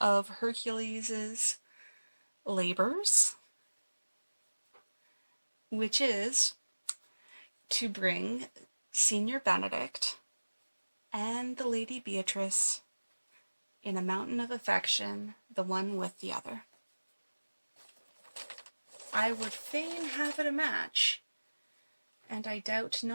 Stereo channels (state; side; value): inverted; both; correlation -1.00